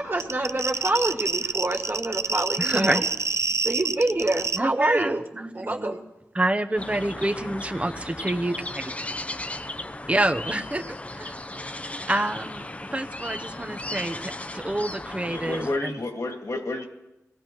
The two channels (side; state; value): both; normal; correlation 0.72